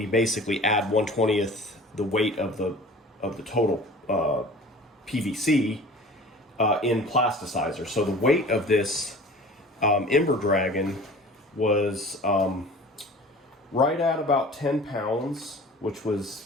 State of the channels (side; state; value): both; normal; correlation 0.43